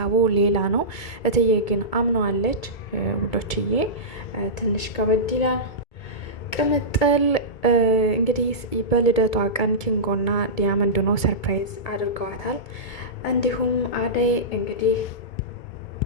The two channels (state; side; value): late; right; 2.2 ms